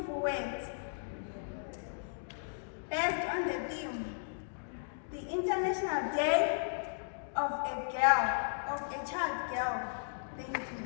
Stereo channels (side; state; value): right; silent; digital silence